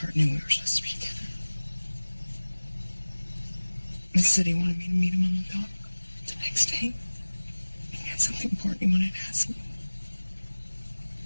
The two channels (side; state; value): both; inverted; correlation -1.00